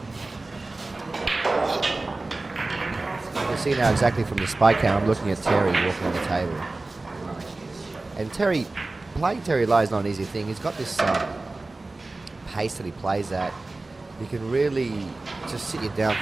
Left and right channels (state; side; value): quieter; left; 3.2 dB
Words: You can see now exactly from the spike cam, I'm looking at Terry walking on the table. And playing Terry Lai is not an easy thing. He's got this pace that he plays at. He can really just sit you down